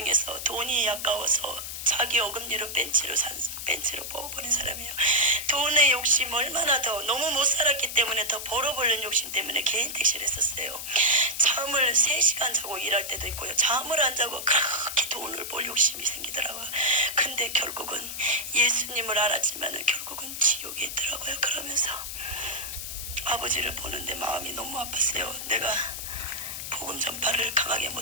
돈이 아까워서 자기 어금니로 벤치로 뽑아버린 사람이에요. 돈의 욕심 얼마나 더 너무 못 살았기 때문에 더 벌어보려는 욕심 때문에 개인 택시를 했었어요. 잠을 3시간 자고 일할 때도 있고요. 잠을 안 자고 그렇게 돈을 벌 욕심이 생기더라고요. 근데 결국은 예수님을 알았지만 결국은 지옥에 있더라고요. 그러면서 아버지를 보는데 마음이 너무 아팠어요. 내가 복음 전파를 강하게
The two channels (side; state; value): left; noise; hiss, 7 dB below the sound